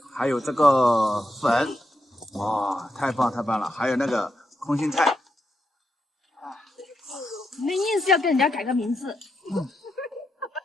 还有这个粉，哇，太棒了！还有那个空心菜。你们硬是要跟人家改个名字。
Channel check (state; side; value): normal; both; correlation 0.83